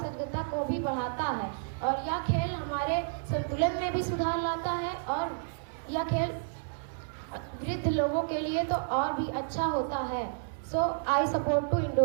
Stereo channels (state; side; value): silent; left; digital silence